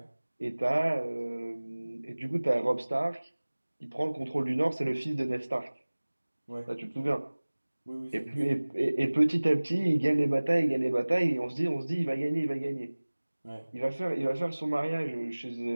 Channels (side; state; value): both; inverted; correlation -1.00